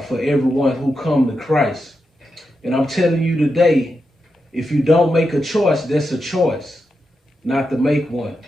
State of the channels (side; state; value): both; normal; correlation 0.87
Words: for everyone who come to Christ. And I'm telling you today, if you don't make a choice, that's a choice not to make one.